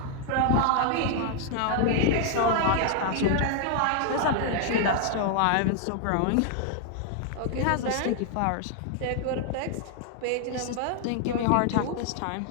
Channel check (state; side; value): different; both; correlation 0.00